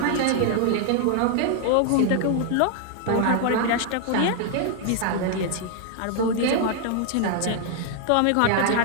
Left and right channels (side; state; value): both; different; correlation 0.00